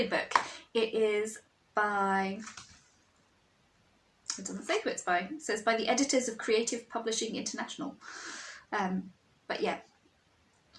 book. It is by, it doesn't say who it's by, it says by the editors of Creative Publishing International, but yeah,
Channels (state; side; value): identical; both; correlation 1.00